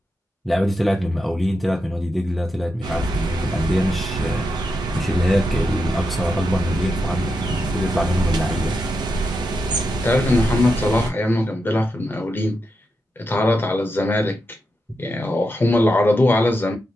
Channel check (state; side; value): normal; both; correlation 0.86